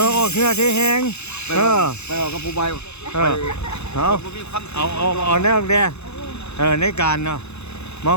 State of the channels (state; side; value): late; right; 0.81 ms